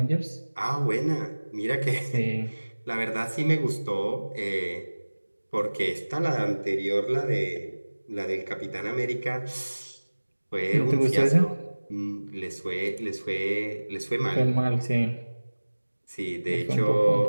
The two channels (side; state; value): both; inverted; correlation -1.00